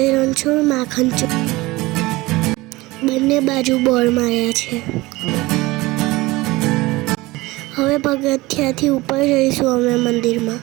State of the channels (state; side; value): quieter; left; 20.7 dB